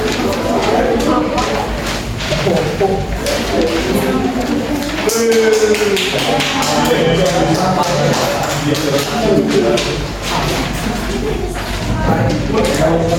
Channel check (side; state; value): both; identical; correlation 1.00